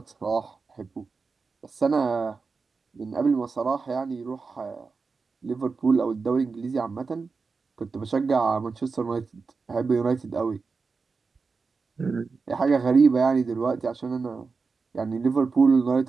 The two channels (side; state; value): left; quieter; 4.6 dB